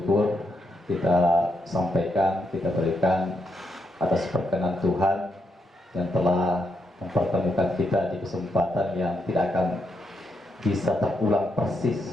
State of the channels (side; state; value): both; normal; correlation 0.81